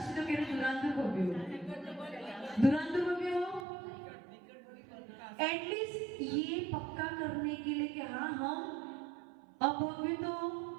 तो कह रहे दुरांदूर भव्य हो, दुरांदूर भव्य हो। एटलीस्ट ये पक्का करने के लिए कि हाँ हम अभव्य तो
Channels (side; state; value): left; drops out; at 3.7 s